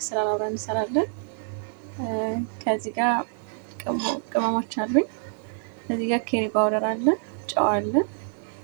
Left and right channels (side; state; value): left; silent; digital silence